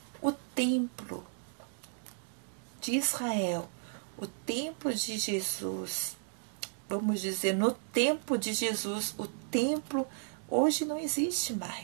O templo de Israel, o templo de Jesus, vamos dizer, no tempo de Jesus, o templo hoje não existe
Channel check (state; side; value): silent; left; digital silence